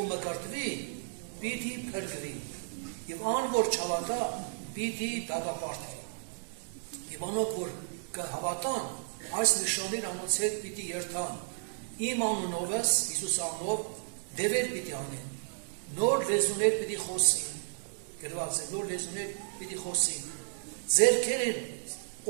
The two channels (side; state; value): left; silent; 56 dB below the other